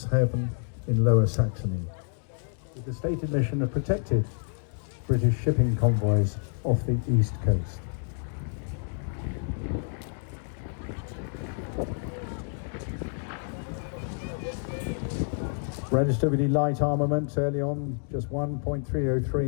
in Lower Saxony, with the stated mission of protecting British shipping convoys off the east coast. Registered with the light armament early on, just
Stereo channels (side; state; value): right; silent; 59 dB below the other